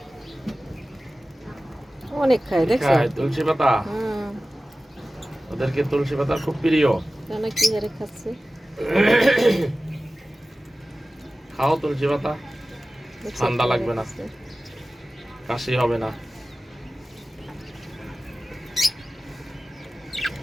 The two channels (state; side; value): normal; both; correlation 0.96